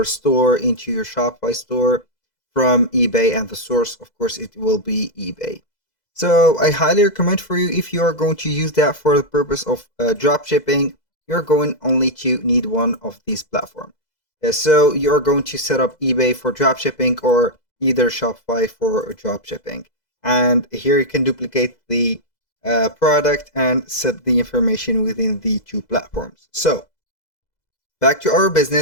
store into your Shopify store from eBay, and the source, of course, it will be eBay. So I highly recommend for you, if you are going to use that for the purpose of drop shipping, you're going only to need one of these platforms. So you're going to set up eBay for drop shipping or either Shopify for drop shipping. And here you can duplicate the product and set the information within the two platforms. So back to our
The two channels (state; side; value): late; right; 2.0 ms